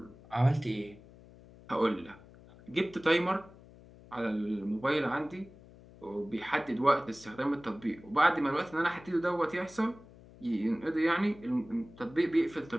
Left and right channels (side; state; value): left; noise; hum, 22 dB below the sound